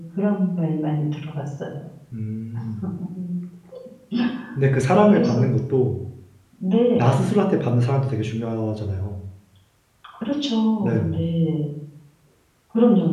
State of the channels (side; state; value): both; identical; correlation 1.00